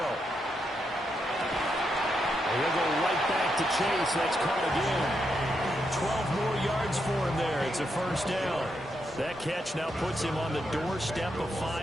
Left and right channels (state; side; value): normal; both; correlation 0.82